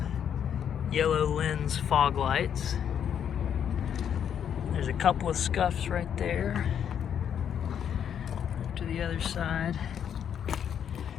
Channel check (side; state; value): right; quieter; 8.7 dB